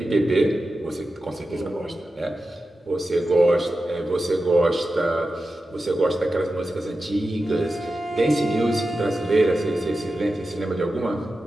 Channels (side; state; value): both; normal; correlation 0.92